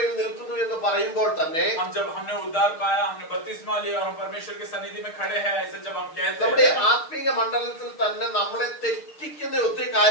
നിൽക്കുന്നു എന്ന് പറയുമ്പോൾ തന്നെ जब हमने उद्धार पाया, हमने बपतिस्मा लिया और हम परमेश्वर की सन्निधि में खड़े हैं, ऐसे जब हम कहते നമ്മുടെ हैं, ആത്മീയ മണ്ഡലത്തിൽ തന്നെ നമ്മളെ തെറ്റിക്കുന്ന ഒത്തിരി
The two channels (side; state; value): right; late; 6.4 ms